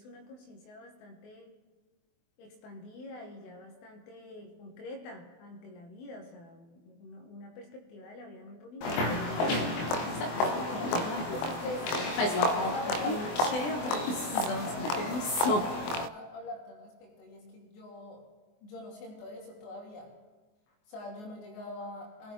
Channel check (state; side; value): late; right; 24 ms